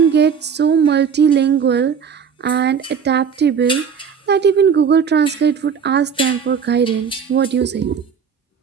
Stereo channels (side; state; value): left; quieter; 6.8 dB